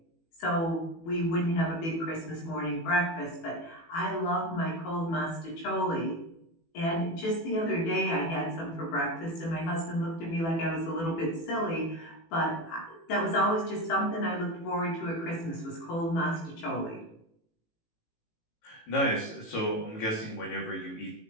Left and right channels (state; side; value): late; right; 18 ms